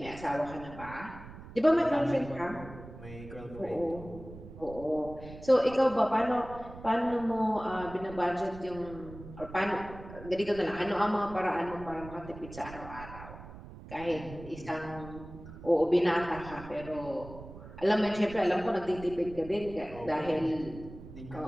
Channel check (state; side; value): noise; right; rumble, 15 dB below the sound